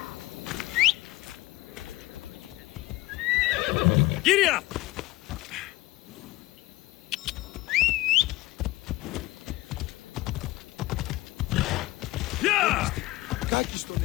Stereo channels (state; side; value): quieter; right; 18.8 dB